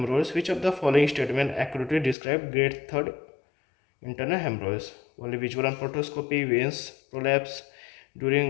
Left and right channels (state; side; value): drops out; right; at 2.1 s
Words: Which of the following statement accurately describe grade 3rd internal hemorrhoids? Only visual on proctoscopy, veins prolapse